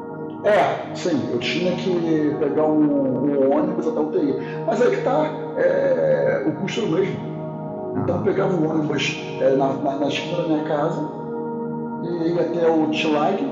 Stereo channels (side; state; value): both; identical; correlation 1.00